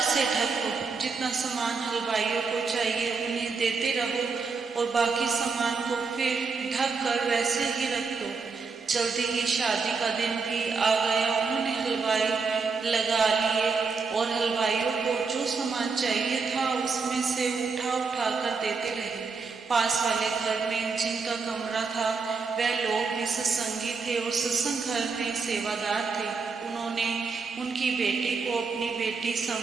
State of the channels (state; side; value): quieter; left; 4.8 dB